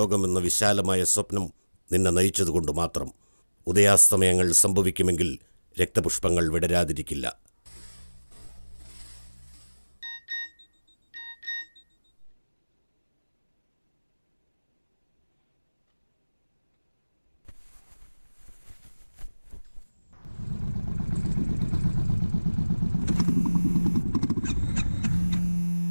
വിശാലമായ സ്വപ്നം നിന്നെ നയിച്ചതുകൊണ്ട് മാത്രം. ഉദയാസ്തമയങ്ങൾ സംഭവിക്കുമെങ്കിൽ രക്തപുഷ്പങ്ങൾ വിടരാതിരിക്കില്ല.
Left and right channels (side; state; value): both; inverted; correlation -1.00